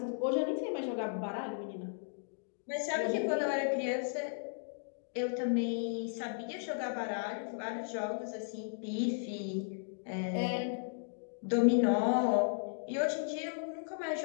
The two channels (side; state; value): right; silent; digital silence